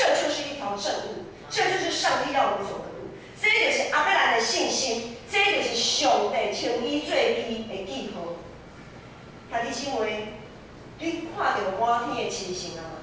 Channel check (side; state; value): both; identical; correlation 1.00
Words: 就是一条正路，这就是上帝要我们走的路。这就是阿伯兰的信心。这就是上帝称伊做伊的记号。兄弟姊妹，你看到满天的星星了吗？